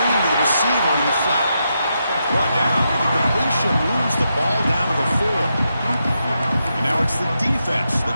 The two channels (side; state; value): both; inverted; correlation -0.84